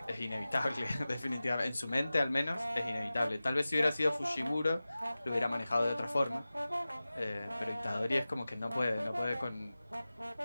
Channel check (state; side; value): inverted; both; correlation -0.96